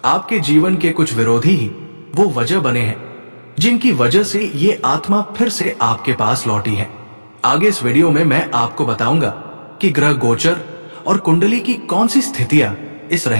आपके जीवन के कुछ विरोधी ही वो वजह बने हैं जिनकी वजह से ये आत्मा फिर से आपके पास लौटी है। आगे इस वीडियो में मैं आपको बताऊंगा कि ग्रह गोचर और कुंडली की कौन सी स्थितियां इस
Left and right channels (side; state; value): both; inverted; correlation -1.00